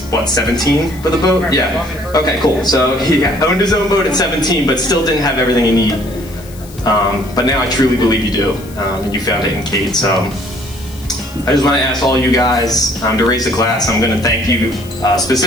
what, 17 with a boat? Yeah. Okay, cool. So he owned his own boat at 17, but still didn't have everything he needed. But now I truly believe you do, and you found it in Kate. So I just want to ask all you guys to raise a glass. I'm going to thank you,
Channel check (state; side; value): noise; left; hiss, 21 dB below the sound